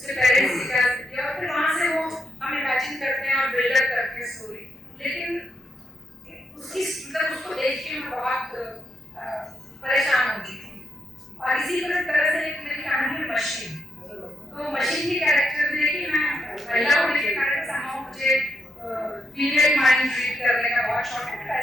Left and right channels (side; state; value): both; normal; correlation 0.80